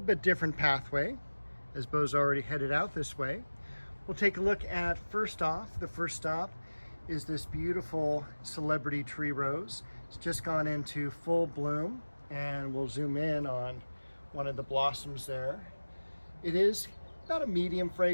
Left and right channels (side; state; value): both; inverted; correlation -1.00